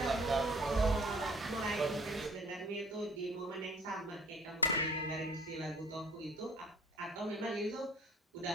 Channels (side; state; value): both; normal; correlation 0.52